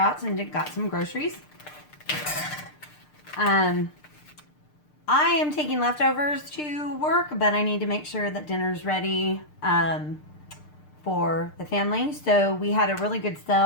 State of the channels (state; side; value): late; right; 6.6 ms